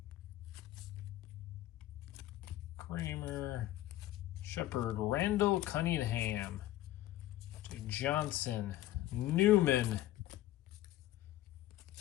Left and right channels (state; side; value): quieter; right; 14.8 dB